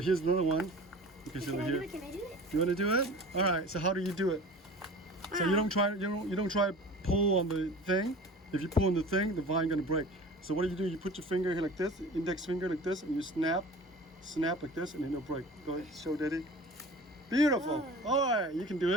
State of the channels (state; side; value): normal; both; correlation 0.40